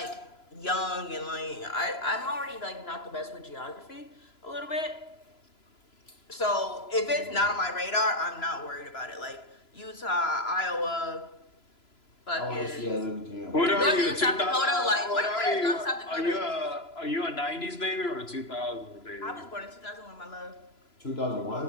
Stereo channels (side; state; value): right; late; 3.0 ms